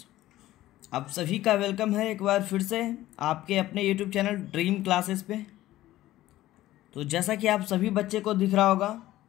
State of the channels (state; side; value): quieter; right; 15.3 dB